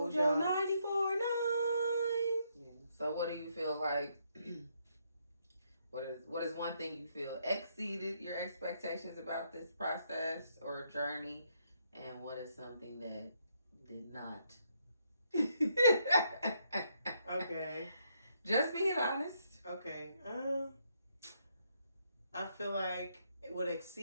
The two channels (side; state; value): both; inverted; correlation -0.74